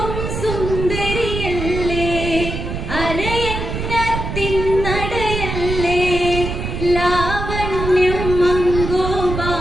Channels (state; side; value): noise; right; rumble, 4 dB below the sound